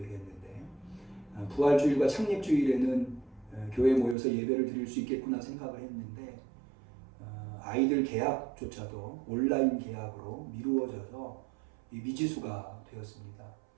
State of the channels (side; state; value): left; drops out; at 4.2 s